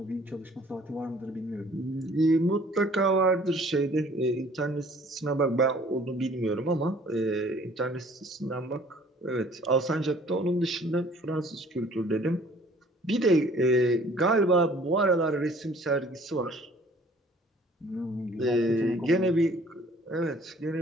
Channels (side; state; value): both; normal; correlation 0.55